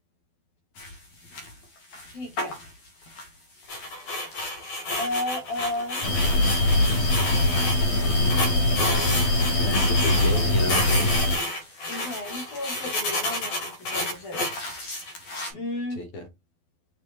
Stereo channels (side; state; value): right; late; 12 ms